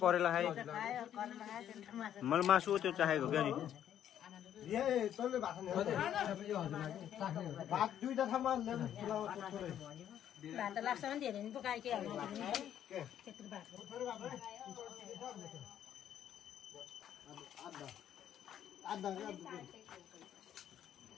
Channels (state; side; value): quieter; right; 10.4 dB